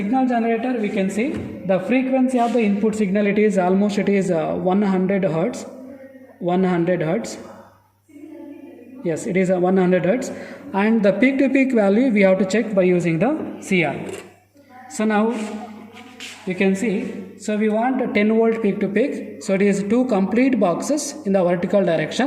generator we can see the frequency of the input signal, it is 100 hertz. 100 hertz. Yes, it is 100 hertz, and the peak to peak value we have to check by using the CR. So now you can see, so we want a 10 volt peak to peak, so it is 2 complete boxes in the vertical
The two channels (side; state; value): both; identical; correlation 1.00